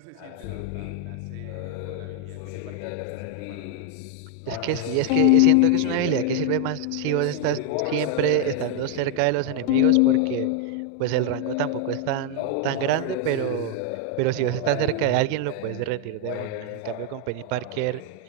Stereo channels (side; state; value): both; different; correlation 0.00